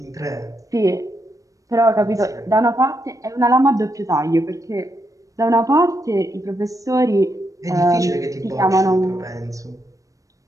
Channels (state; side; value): late; left; 0.16 ms